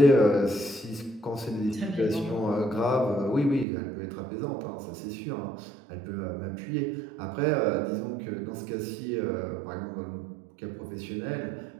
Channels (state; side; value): drops out; left; at 3.7 s